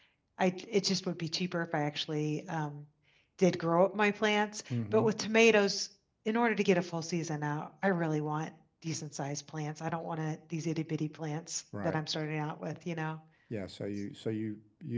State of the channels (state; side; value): identical; both; correlation 1.00